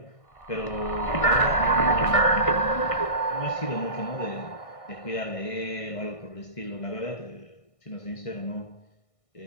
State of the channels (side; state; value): right; late; 1.6 ms